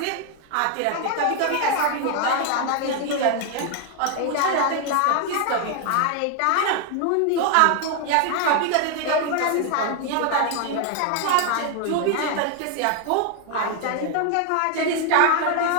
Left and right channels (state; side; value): different; both; correlation 0.01